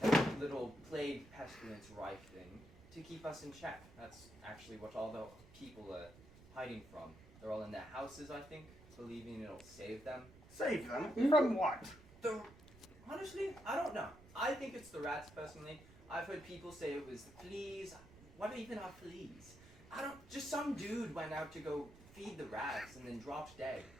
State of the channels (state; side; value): noise; right; rumble, 21 dB below the sound